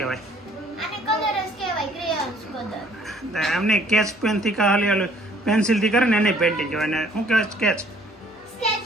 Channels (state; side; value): normal; both; correlation 0.59